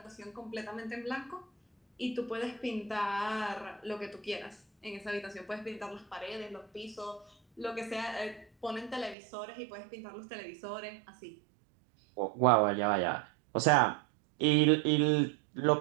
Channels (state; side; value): drops out; left; at 9.2 s